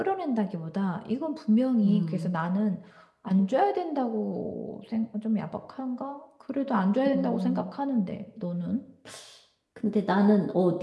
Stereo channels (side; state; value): both; identical; correlation 1.00